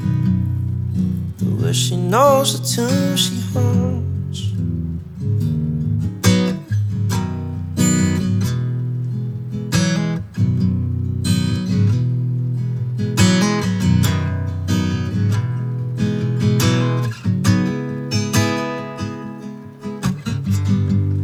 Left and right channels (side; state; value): both; identical; correlation 1.00